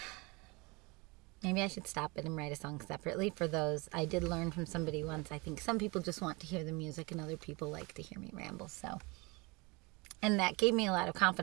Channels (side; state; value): left; quieter; 26.6 dB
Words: Maybe I should stop it and write a song separately for those. I did learn from somebody once, I think some people just want to hear the music and other people like to hear me ramble, and that gave me a lot of